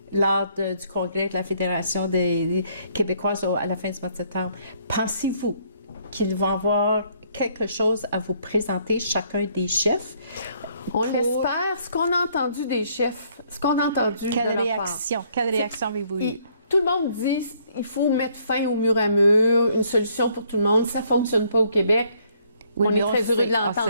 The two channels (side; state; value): both; inverted; correlation -0.66